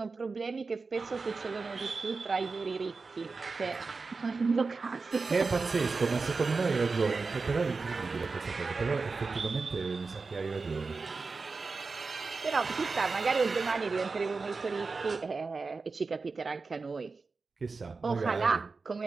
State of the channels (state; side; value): quieter; left; 4.3 dB